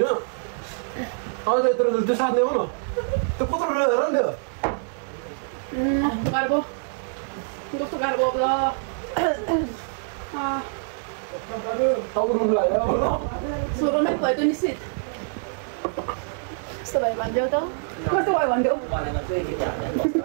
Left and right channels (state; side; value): silent; left; digital silence